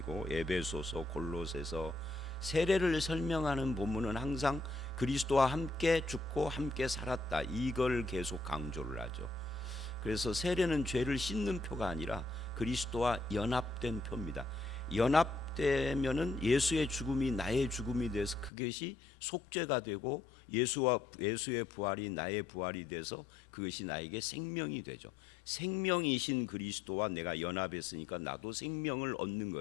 에베소서 골로새서 세례를 설명하는 본문은 항상 그리스도와 함께 죽고 함께 살았다, 이걸 계속 강조를 하죠. 그래서 세례는 죄를 씻는 표가 아니라 그리스도와 연합된 표입니다. 연합되면은 예수의 죽음이 나의 죽음이 돼서 그것이 속죄가 되고, 예수의 부활이 나의 부활이 돼서 그것이 나에게 생명이 되죠. 생명이신 그리스도와 내가 연합했으니까 나도 생명을 얻는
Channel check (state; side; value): drops out; right; at 18.5 s